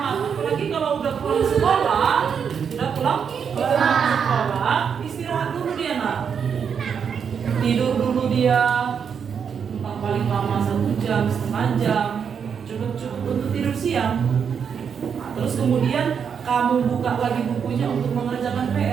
Apalagi kalau udah pulang sekolah, istirahat dulu dia nak. Tidur dulu dia, paling lama 1 jam, setengah jam, cukup untuk tidur siang. Terus kemudian kamu buka lagi bukunya untuk mengerjakan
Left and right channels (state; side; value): quieter; left; 7.0 dB